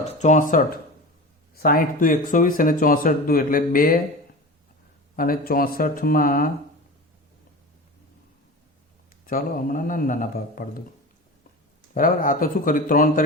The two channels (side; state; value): both; normal; correlation 0.30